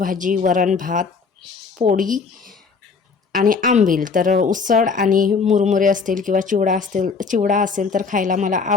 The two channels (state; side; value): quieter; right; 5.1 dB